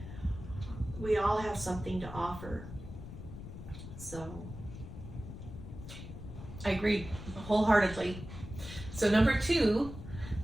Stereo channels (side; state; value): left; noise; rumble, 11 dB below the sound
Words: we all have something to offer. So I agree wholeheartedly. So number 2,